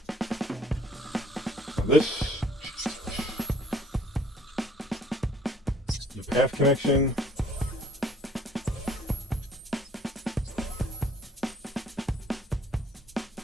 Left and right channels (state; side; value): normal; both; correlation 0.58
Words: So this, the path connection.